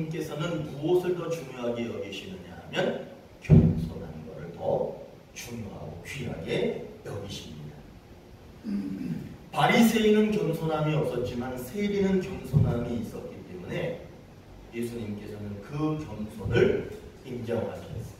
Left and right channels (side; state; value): both; identical; correlation 1.00